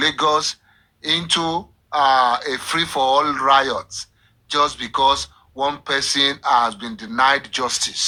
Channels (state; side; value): identical; both; correlation 1.00